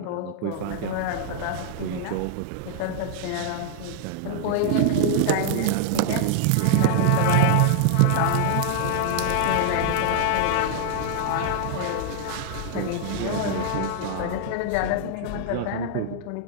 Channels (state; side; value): different; both; correlation -0.01